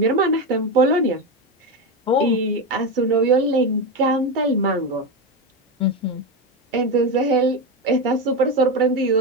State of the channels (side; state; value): both; normal; correlation 0.14